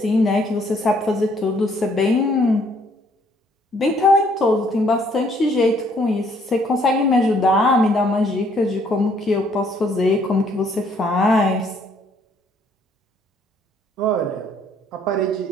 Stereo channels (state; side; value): normal; both; correlation 0.65